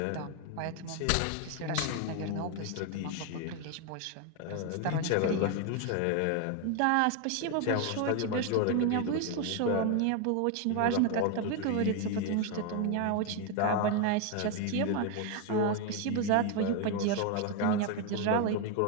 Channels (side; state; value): both; different; correlation 0.01